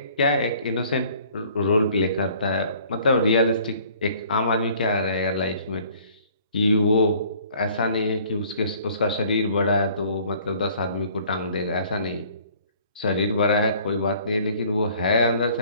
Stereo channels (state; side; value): inverted; both; correlation -0.55